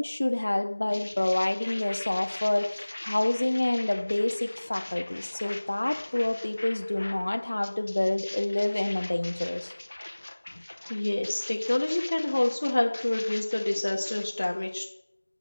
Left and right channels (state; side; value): inverted; both; correlation -1.00